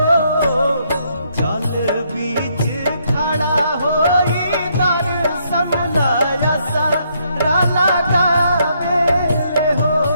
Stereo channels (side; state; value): both; inverted; correlation -0.73